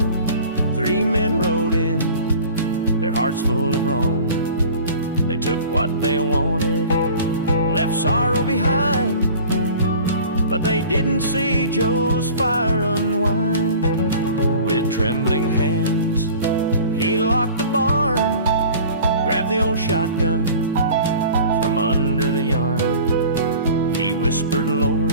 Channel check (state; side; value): inverted; both; correlation -0.43